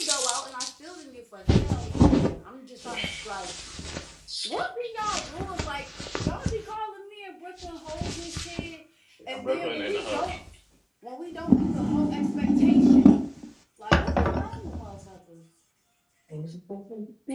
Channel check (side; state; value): both; identical; correlation 1.00